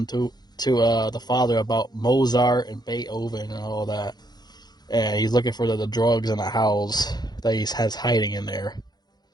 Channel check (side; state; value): right; late; 0.20 ms